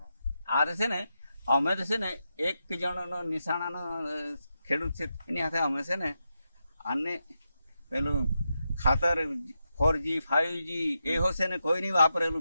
આ છે ને અમે તો છે ને એક જણનો નિશાણાનો ખેડૂત છે એની હાથે અમે છે ને આને પેલું ખાતર 4G 5G એવો છે ને કોઈ નહીં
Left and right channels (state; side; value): inverted; both; correlation -0.87